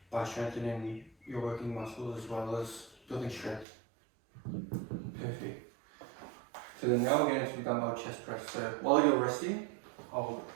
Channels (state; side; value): drops out; left; at 3.7 s